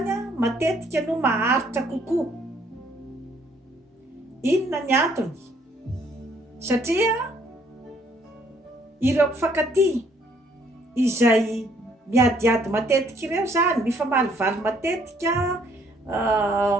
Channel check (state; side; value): normal; both; correlation 0.65